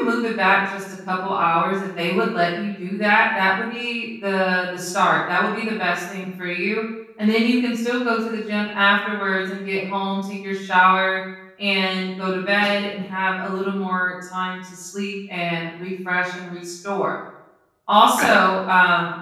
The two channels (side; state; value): both; identical; correlation 1.00